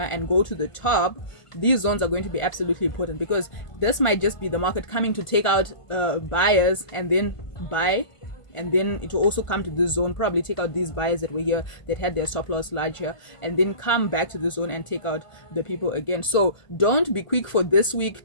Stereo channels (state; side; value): late; right; 1.5 ms